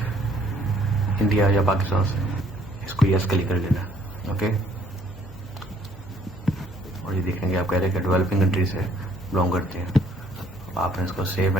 इंडिया या पाकिस्तान से, इसको यस क्लिक कर लेना। ओके, और ये देखेंगे आप कह रहे हैं कि डेवलपिंग कंट्री से बिलोंग करते हैं। आपने इसको सेव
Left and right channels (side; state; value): both; normal; correlation 0.62